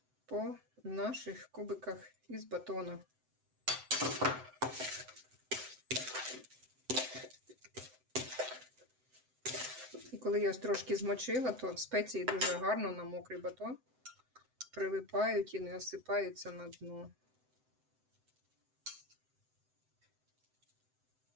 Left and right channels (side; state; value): left; late; 7.8 ms